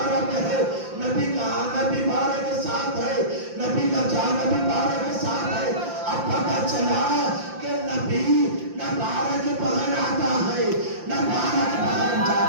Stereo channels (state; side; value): late; left; 5.8 ms